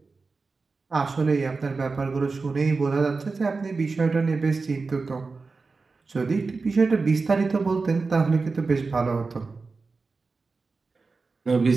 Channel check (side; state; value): left; quieter; 4.2 dB